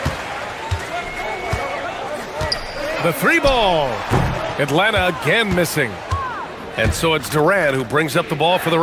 The three ball. Atlanta again missing. And so it's Durant who brings up the ball for the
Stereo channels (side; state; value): both; identical; correlation 1.00